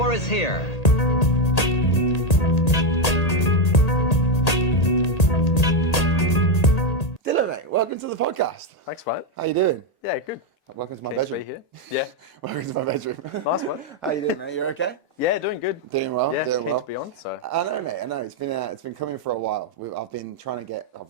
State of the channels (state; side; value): late; right; 1.8 ms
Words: is here. Dylan, mate, welcome to the podcast. Thanks, mate. How you doing? Yeah, good. Welcome to my Keen to bedroom. be here. Yeah. Welcome to my bedroom. Nice one. How you doing, mate? You okay? Yeah, doing good. Doing well. Yeah, doing keen well. to be on. So I know, mate. I know. It's been coming for a while. I've been trying to get.